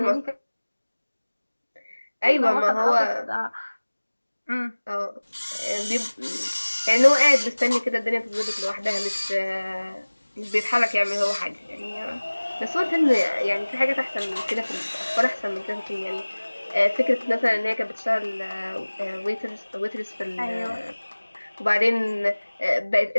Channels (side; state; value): both; inverted; correlation -1.00